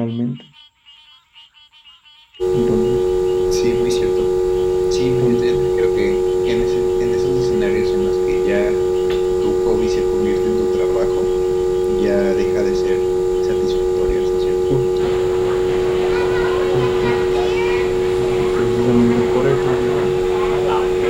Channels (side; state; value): both; identical; correlation 1.00